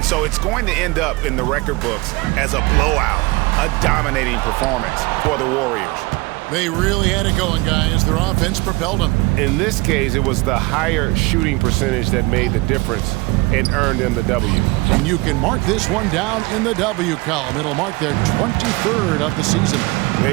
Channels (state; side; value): quieter; left; 23.5 dB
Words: so it's going to end up in the record books as a blowout, a dominating performance for the Warriors. They really had it going, guys. Their offense propelled them. In this case, it was the higher shooting percentage that made the difference and earned them the W. And you can mark this one down in the W column. It'll mark their 23rd of the season. They